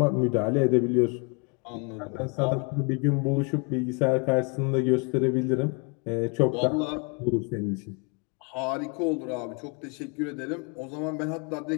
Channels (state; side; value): quieter; right; 33.8 dB